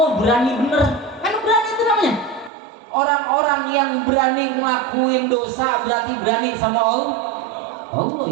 berani bener, kan berani itu namanya. Orang-orang yang berani ngelakuin dosa berarti berani sama Allah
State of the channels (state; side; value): drops out; left; at 2.5 s